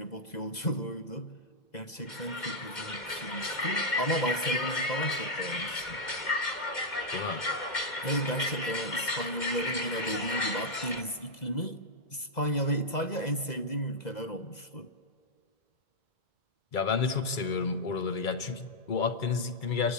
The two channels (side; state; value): right; late; 2.0 ms